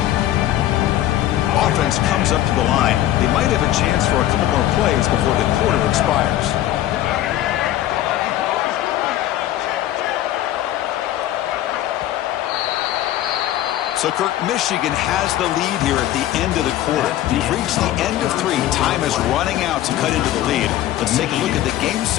Offense comes up to the line. They might have a chance for a couple more plays before the quarter expires. So, Kirk, Michigan has the lead here at the end of the quarter. We've reached the end of 3. Time is running out to cut into the lead. Let's take a look at the game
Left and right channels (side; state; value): right; quieter; 13.4 dB